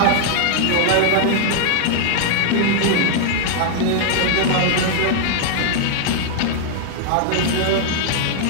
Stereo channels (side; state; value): both; different; correlation 0.00